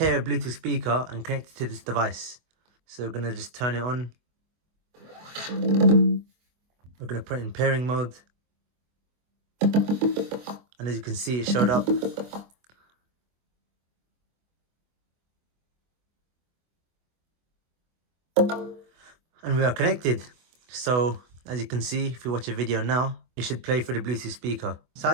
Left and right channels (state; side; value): late; left; 24 ms